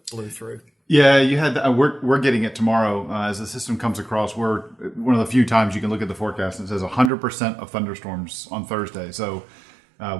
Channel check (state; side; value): drops out; left; at 7.1 s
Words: blew through. Yeah, you had. We're getting it tomorrow as the system comes across. We're one of the few times you can look at the forecast and it says 100% of thunderstorms on Thursday. So